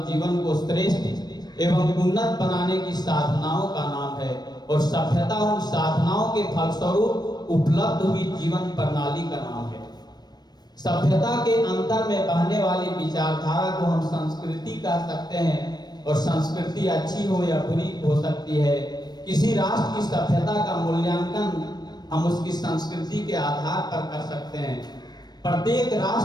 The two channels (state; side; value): late; right; 0.20 ms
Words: जीवन को श्रेष्ठ एवं उन्नत बनाने की साधनाओं का नाम है, और सभ्यता उन साधनाओं के फलस्वरूप उपलब्ध हुई जीवन प्रणाली का नाम है। सभ्यता के अंतर में बहने वाली विचारधारा को हम संस्कृति कह सकते हैं, और संस्कृति अच्छी हो या बुरी हो सकती है। किसी राष्ट्र की सभ्यता का मूल्यांकन हम उसकी संस्कृति के आधार पर कर सकते हैं। प्रत्येक